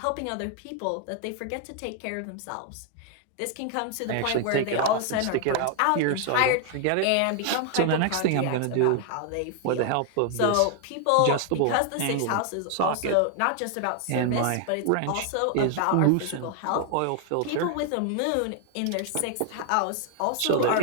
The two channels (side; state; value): both; different; correlation 0.00